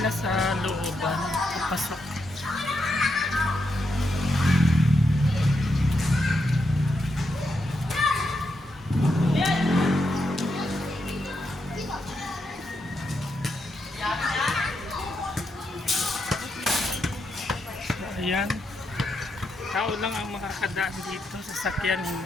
sa looban, papasok. So, ayan. Tao lang ang makakadaan dito, sasakyan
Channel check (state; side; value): normal; both; correlation 0.82